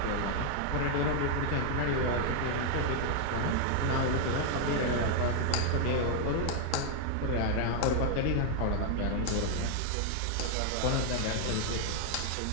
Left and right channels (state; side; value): different; both; correlation 0.00